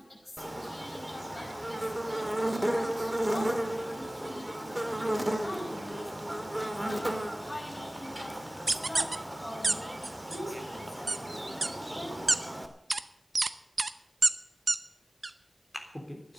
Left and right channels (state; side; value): normal; both; correlation 0.98